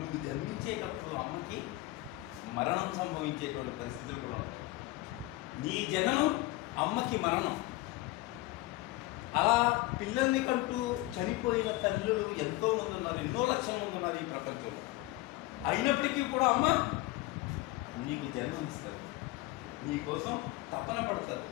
జన్మించేటప్పుడు అమ్మకి మరణం సంభవించేటువంటి పరిస్థితులు కూడా ఉంటాయి. నీ జననం అమ్మకి మరణం. అలా పిల్లల్ని కంటూ చనిపోయిన తల్లులు ఎంతోమంది ఉన్నారు, ఎన్నో లక్షల మంది ఉన్నారు ఈ ప్రపంచంలో. అయినప్పటికీ కూడా అమ్మ నీకు జన్మనిస్తారు, నీకోసం తపన పడతారు,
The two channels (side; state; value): right; quieter; 18.9 dB